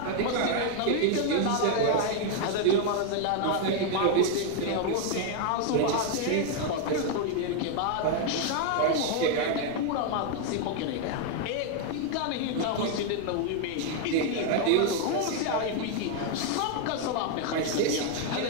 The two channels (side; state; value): both; different; correlation 0.00